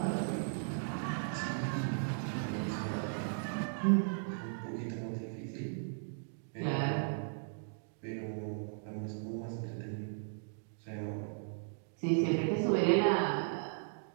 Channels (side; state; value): left; silent; digital silence